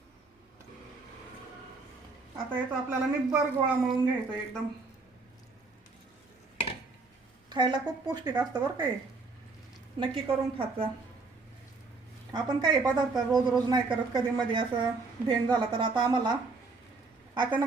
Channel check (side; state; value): left; quieter; 3.9 dB